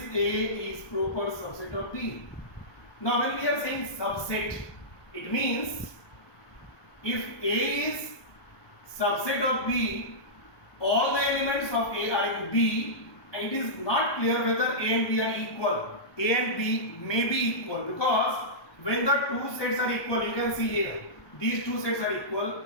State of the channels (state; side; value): late; right; 1.2 ms